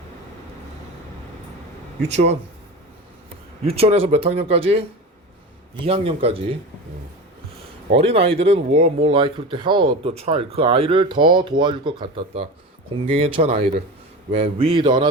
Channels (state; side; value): normal; both; correlation 0.28